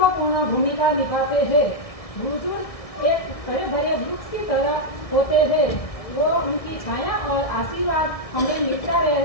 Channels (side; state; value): right; late; 1.6 ms